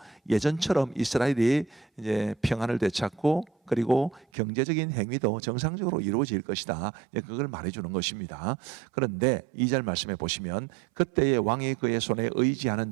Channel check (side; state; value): left; drops out; at 4.2 s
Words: 예전처럼 이스라엘이 이제 평안을 되찾고 그리고 경제적인 행위도 정상적으로 이루어질 것이다. 그걸 말해주는 것입니다. 그런데 2절 말씀해 보시면 그때의 왕이 그의 손에 의지하는